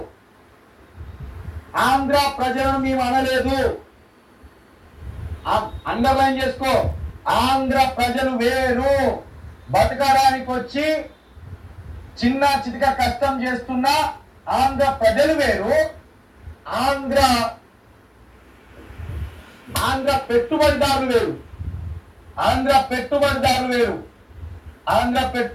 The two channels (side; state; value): both; identical; correlation 1.00